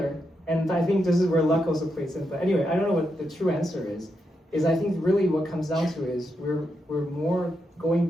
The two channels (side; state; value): both; normal; correlation 0.83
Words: And I think this is where luck also plays in. But anyway, I don't know what the true answer is I think really what comes down to is we're more going